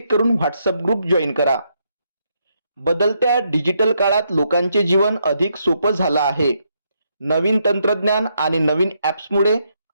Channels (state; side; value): inverted; both; correlation -0.77